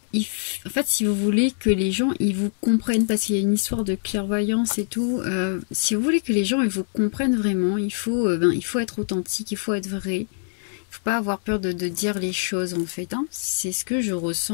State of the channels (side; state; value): right; silent; digital silence